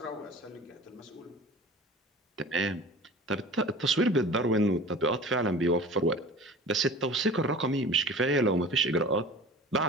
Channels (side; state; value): both; normal; correlation 0.40